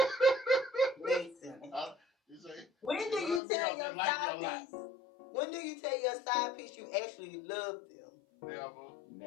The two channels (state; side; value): drops out; right; at 3.4 s